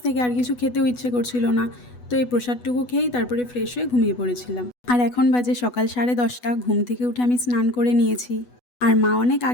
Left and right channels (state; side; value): late; right; 8.1 ms